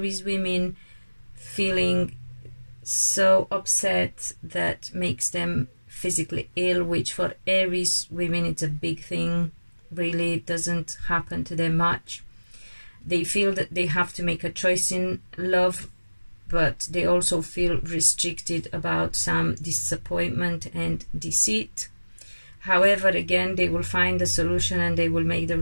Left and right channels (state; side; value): inverted; both; correlation -1.00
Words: women feeling so upset that makes them physically ill, which for Aries women it's a big thing. Really, it doesn't happen to them much. They feel that they have to make a choice in love, but they also feel restricted about some disappointment and deceit. However, again, they will find a solution and they will make the